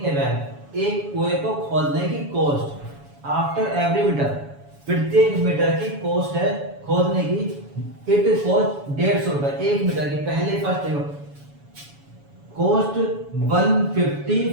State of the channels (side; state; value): left; late; 7.1 ms